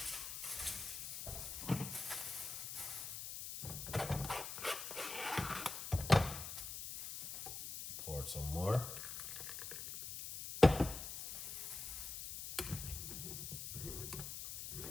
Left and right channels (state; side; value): noise; left; hiss, 6 dB below the sound